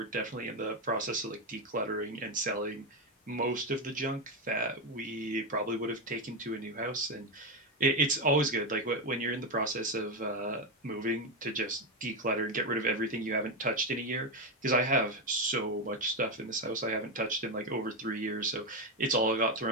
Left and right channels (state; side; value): normal; both; correlation 0.09